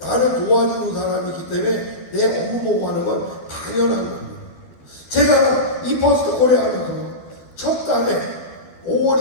도와주는 사람이기 때문에 내 업무 보고 하는 건 당연한 겁니다. 제가 이 퍼스트 코리아 하면서 첫 달에 5월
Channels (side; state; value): right; late; 12 ms